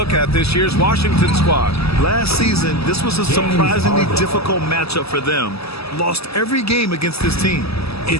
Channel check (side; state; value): right; late; 0.78 ms